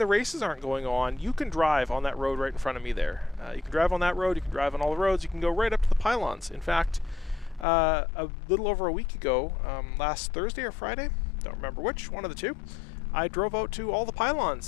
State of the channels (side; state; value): right; drops out; at 7.7 s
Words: races aren't going on, you can drive on that road right in front of me there. You can drive on that road, you can drive on all the roads, you can go right up to the pylons. In fact, a little over a week ago, last Thursday or Friday, don't remember which, one of the two, I drove out to all the